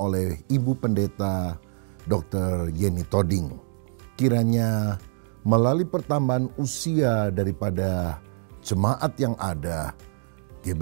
Ibu Pendeta Dr. Yeni Toding. Kiranya melalui pertambahan usia daripada jemaat yang ada,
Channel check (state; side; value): silent; left; digital silence